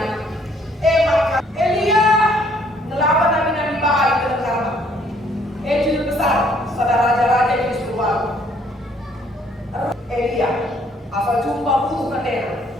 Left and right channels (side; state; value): both; normal; correlation 0.64